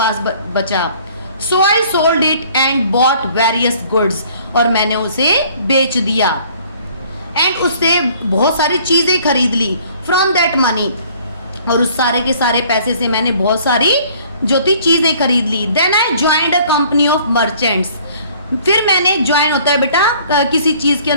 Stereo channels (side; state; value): both; inverted; correlation -0.56